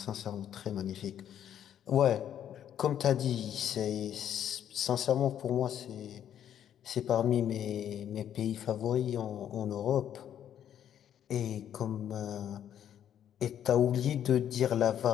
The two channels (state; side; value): quieter; right; 10.0 dB